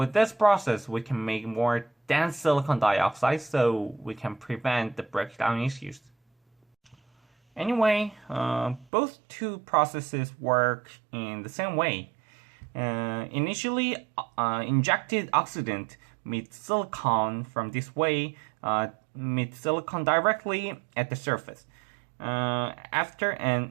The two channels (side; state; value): left; drops out; at 8.8 s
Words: this process we can make more dense silicon dioxide, so we can prevent the breakdown issues. Anyway, both two processes work in the same way. Initially, injected oxidant meets silicon from this way, meets silicon directly at the surface. After